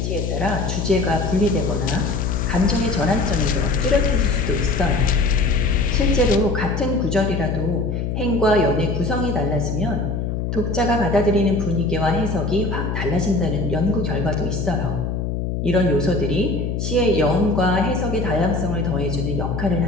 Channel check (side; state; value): left; noise; hum, 2 dB below the sound